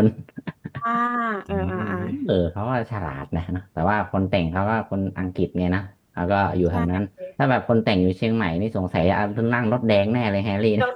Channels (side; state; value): both; identical; correlation 1.00